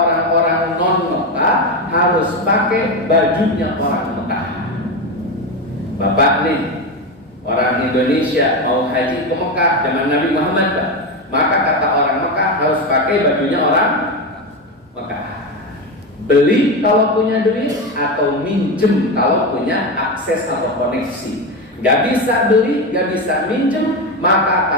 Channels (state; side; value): normal; both; correlation 0.15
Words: non Mekah harus pakai bajunya orang Mekah. Bapak nih, orang Indonesia mau haji ke Mekah zaman Nabi Muhammad, Pak, maka kata orang Mekah harus pakai bajunya orang Mekah. Beli kalau punya duit atau minjem kalau punya akses atau koneksi. Gak bisa beli, gak bisa minjem, maka